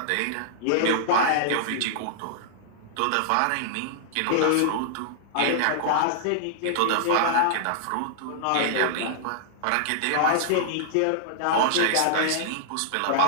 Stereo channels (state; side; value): different; both; correlation -0.01